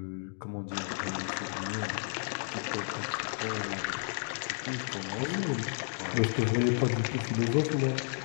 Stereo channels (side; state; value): right; silent; digital silence